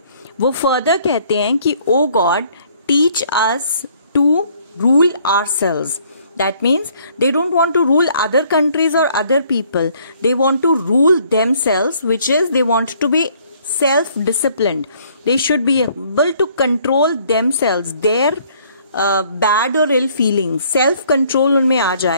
वो फर्दर कहते हैं कि O God, teach us to rule ourselves. That means they don't want to rule other countries or other people. They want to rule themselves, which is they want to be self-disciplined. They should be able to control themselves, their bad or ill feelings. Self-control उनमें आ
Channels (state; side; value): inverted; both; correlation -0.62